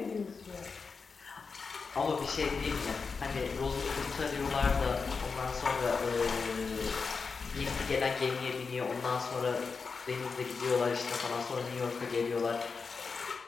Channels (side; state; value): right; quieter; 5.0 dB